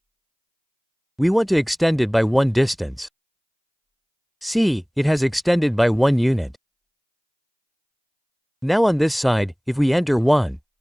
We want to extend it by 1 distance. See, it has extended by 1 unit. Now on this side, if we enter 1,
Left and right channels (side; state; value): both; identical; correlation 1.00